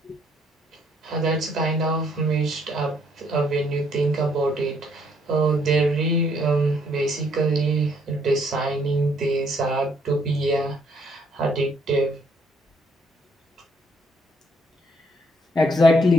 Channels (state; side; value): normal; both; correlation 0.68